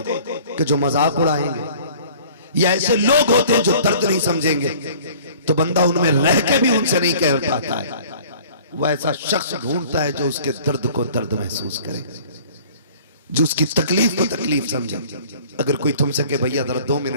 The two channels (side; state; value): both; inverted; correlation -0.49